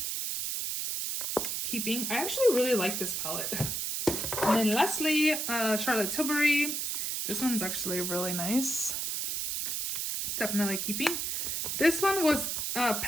Keeping. I actually really like this palette. And then lastly, Charlotte Tilbury. This one's actually really nice. Definitely keeping. This one was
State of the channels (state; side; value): noise; right; hiss, 1 dB below the sound